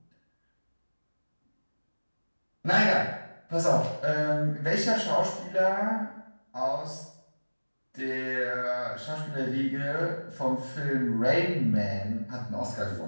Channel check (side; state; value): both; inverted; correlation -1.00